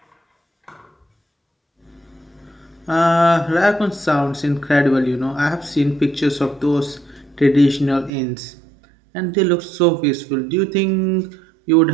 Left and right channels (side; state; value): left; drops out; at 8.1 s